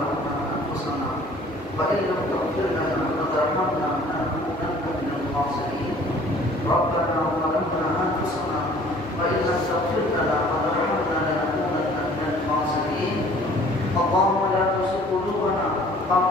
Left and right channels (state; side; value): normal; both; correlation 0.53